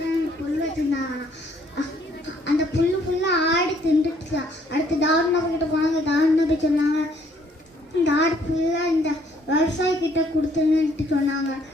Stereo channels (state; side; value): normal; both; correlation 0.65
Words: புல் வச்சிருந்தாங்கன்னா அந்த புல்லு ஃபுல்லாக ஆடு தின்றுச்சு. அடுத்து தாவூத் நபி கிட்ட போனாங்க. தாவூத் நபி சொன்னாங்க இந்த ஆடு ஃபுல்லாக இந்த விவசாயிக்கிட்ட கொடுத்துருன்னுட்டு சொன்னாங்க.